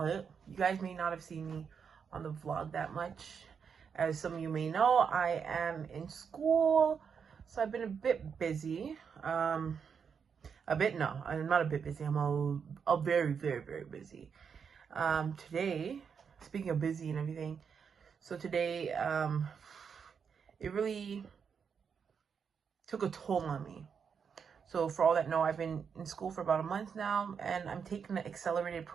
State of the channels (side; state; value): left; quieter; 6.6 dB